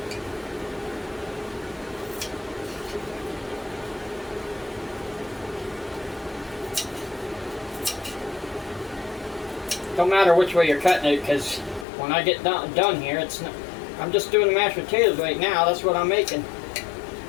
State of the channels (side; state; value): right; drops out; at 11.9 s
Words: Don't matter which way you're cutting it, because when I get done here, I'm just doing the mashed potatoes right now. That's what I'm making.